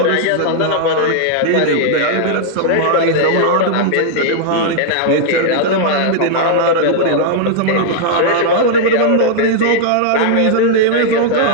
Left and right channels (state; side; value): different; both; correlation -0.01